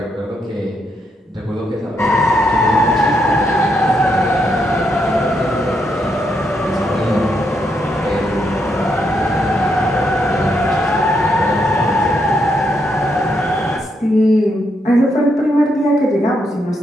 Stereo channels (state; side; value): normal; both; correlation 0.78